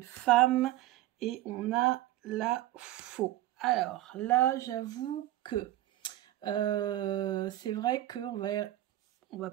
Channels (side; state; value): left; quieter; 14.9 dB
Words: femme et on a la faux. Alors là, j'avoue que c'est vrai qu'on va